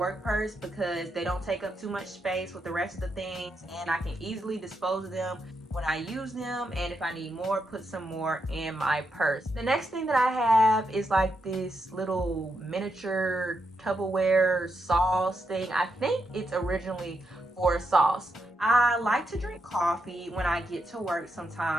purse because they don't take up too much space with the rest of the things, and I can easily dispose of them when I use them, and if I need more, put some more in my purse. The next thing that I have is like this little miniature Tupperware sauce thing. I think it's originally for sauce. I like to drink coffee when I get to work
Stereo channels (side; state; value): both; normal; correlation 0.83